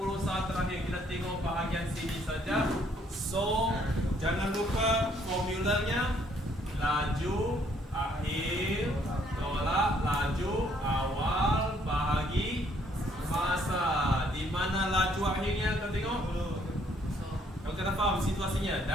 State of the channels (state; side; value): normal; both; correlation 0.66